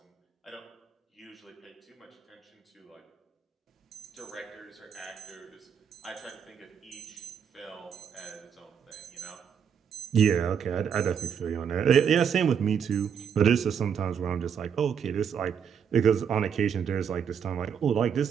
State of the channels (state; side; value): quieter; left; 7.5 dB